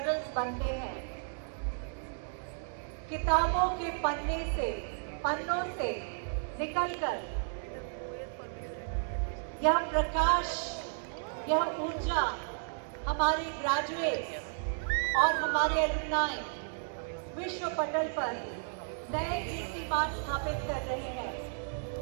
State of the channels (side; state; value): left; silent; digital silence